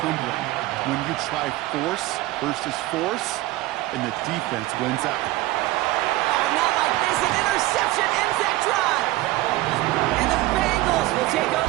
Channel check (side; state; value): left; quieter; 17.8 dB